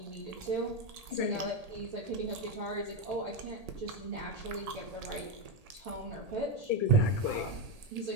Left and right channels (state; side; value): late; left; 1.8 ms